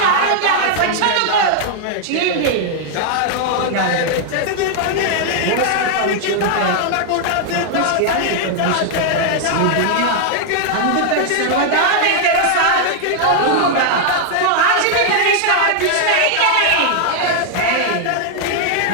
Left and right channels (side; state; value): both; different; correlation 0.00